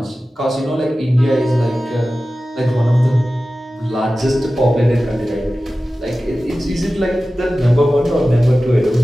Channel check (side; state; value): both; normal; correlation 0.95